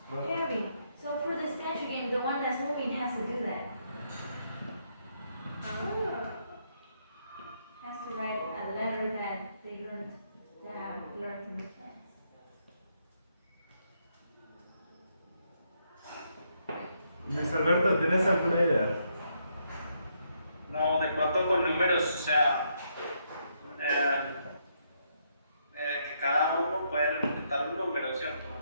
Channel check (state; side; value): inverted; both; correlation -0.76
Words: ¿tienes? Harry, so for the statue game, the one that's moving has to do that. order to make sense. Luis Alberto, ¿tienes alguna idea? No, de pronto con números, o sea, que cada uno puede representar un número, ¿cierto?